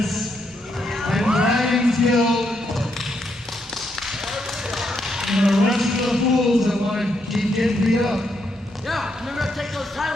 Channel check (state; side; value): normal; both; correlation 0.78